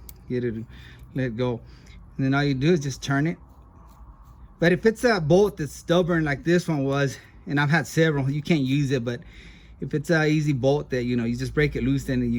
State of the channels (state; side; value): identical; both; correlation 1.00